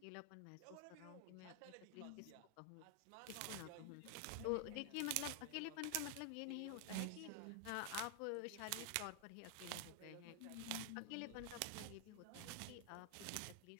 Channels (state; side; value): different; both; correlation 0.00